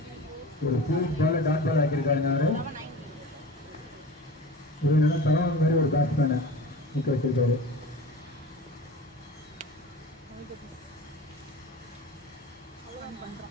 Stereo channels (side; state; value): both; normal; correlation 0.35